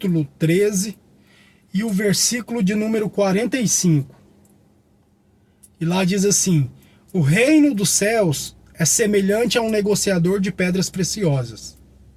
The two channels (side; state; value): both; identical; correlation 1.00